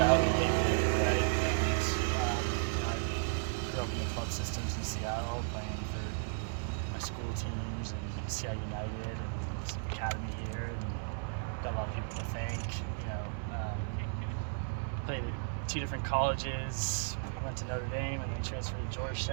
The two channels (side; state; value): left; silent; 55 dB below the other